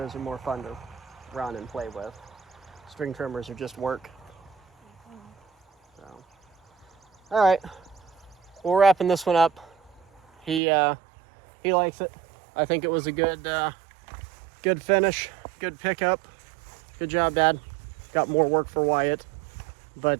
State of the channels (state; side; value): drops out; left; at 10.6 s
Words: are more fun to run and play with. String trimmers are just work. So, all right, we're wrapping this one up. He likes it. I think it was a good finish, good pickup. Good job, Dad. Got more work for Wyatt.